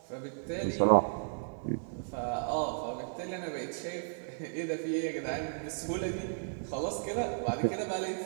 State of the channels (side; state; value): left; silent; digital silence